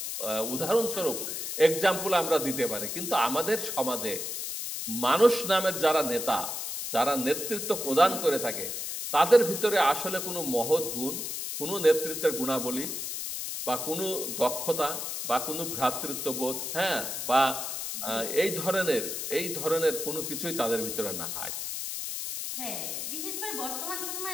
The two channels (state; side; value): noise; left; hiss, 4 dB below the sound